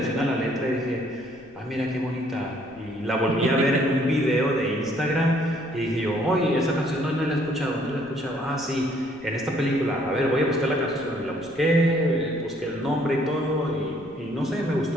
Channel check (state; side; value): noise; left; rumble, 29 dB below the sound